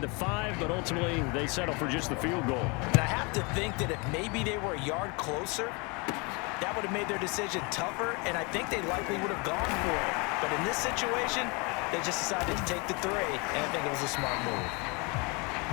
the 5, but ultimately they settle for just the field goal. And I have to think that if maybe they were a yard closer, that would have made their decision tougher, and I think they likely would have gone for it. But in this situation, they just decided to take the 3, and I think it was a smart move.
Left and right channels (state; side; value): quieter; right; 29.9 dB